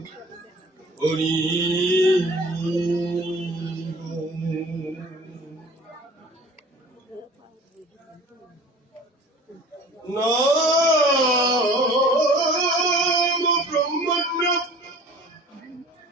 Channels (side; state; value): both; normal; correlation 0.45